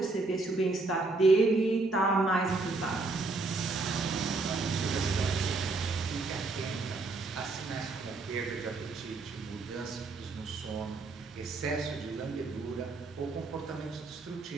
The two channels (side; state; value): left; quieter; 3.5 dB